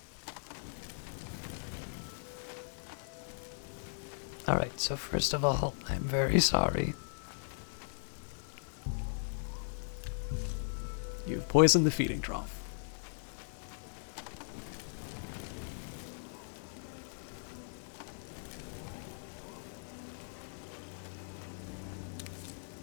Alright, so first of all, I'm very sorry. You've poisoned the feeding trough.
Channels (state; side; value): silent; right; digital silence